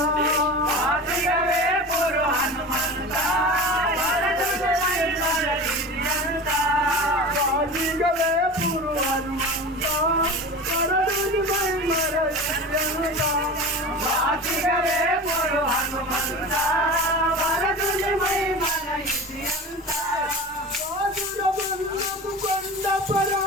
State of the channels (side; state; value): both; normal; correlation 0.32